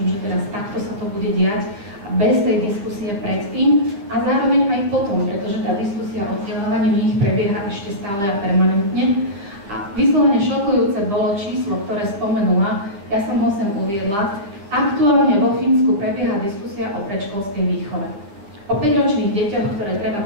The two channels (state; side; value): late; left; 9.9 ms